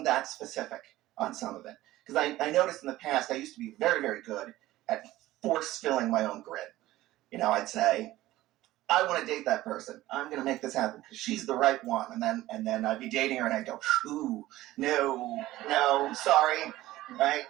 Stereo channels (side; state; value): left; quieter; 16.2 dB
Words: that specific on some of it, because I noticed in the past I used to be very, very good at force filling my own grid. I'd say, I want to date that person. I'm going to make this happen because she's the right one. And then I'd be dating her and I'd go, ooh, no, sorry. Right.